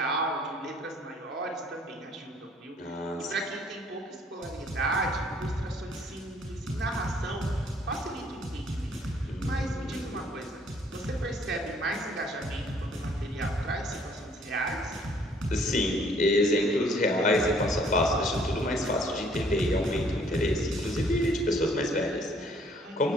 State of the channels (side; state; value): both; normal; correlation 0.61